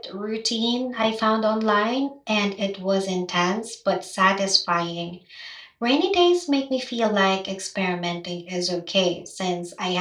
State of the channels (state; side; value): identical; both; correlation 1.00